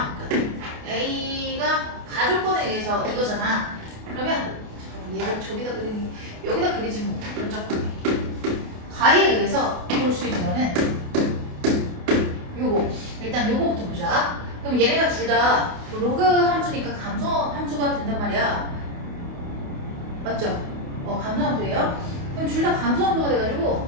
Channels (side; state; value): left; late; 28 ms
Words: A가 가족권에 의해서 이거잖아. 그러면 얘를 저기다 그리니 여기다 그리지 뭐. 깜짝하네. 가에 의해서 볼 수 있는 거는 요거. 일단 요거부터 보자. 그럼 얘네가 둘 다 로그 함수니까 감소 함수가 된단 말이야. 맞죠? 감소 함수예요. 그럼 둘 다 감소 함수가